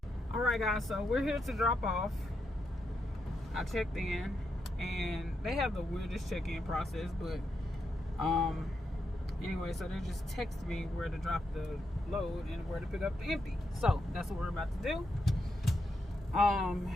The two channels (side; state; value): both; normal; correlation 0.83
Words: All right, guys. So we're here to drop off. I checked in, and they have the weirdest check-in process, but anyway, so they just text me where to drop the load and where to pick up the empty. So that's what we're about to do.